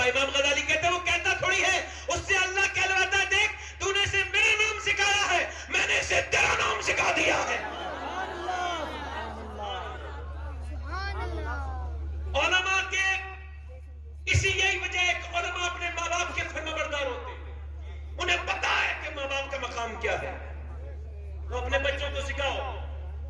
امام غزالی کہتے ہیں وہ کہتا تھوڑی ہے, اس سے اللہ کہلواتا ہے دیکھ تو نے اسے میرا نام سکھایا ہے, میں نے اسے تیرا نام سکھا دیا ہے. علماء کے اسی یہی وجہ ہے کہ علماء اپنے فرماندار ہوتے ہیں، انہیں پتا ہے کہ ماں باپ کا مقام کیا ہے. تو اپنے بچوں کو سکھاؤ.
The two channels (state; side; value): identical; both; correlation 1.00